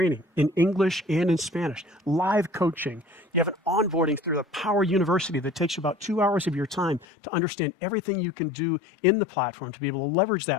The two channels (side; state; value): right; drops out; at 7.1 s